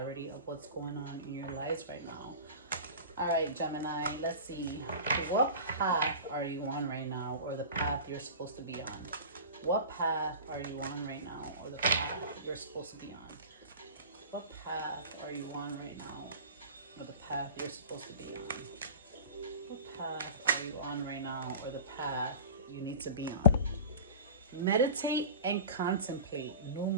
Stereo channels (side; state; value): both; inverted; correlation -0.34